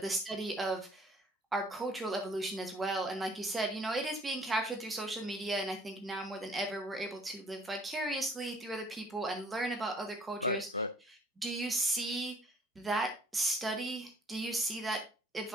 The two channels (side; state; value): both; normal; correlation 0.57